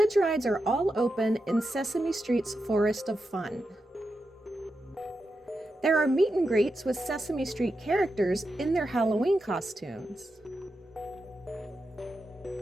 rides are all open in Sesame Street's Forest of Fun. There are meet and greets with Sesame Street characters in their Halloween costumes.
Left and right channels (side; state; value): both; normal; correlation 0.88